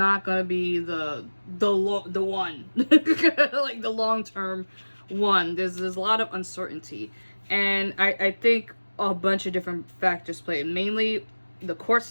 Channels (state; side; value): inverted; both; correlation -1.00